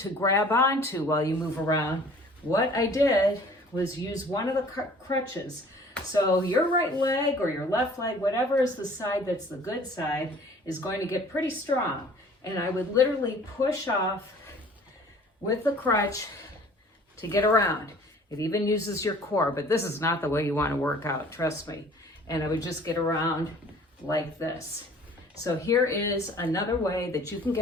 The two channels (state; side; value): normal; both; correlation 0.50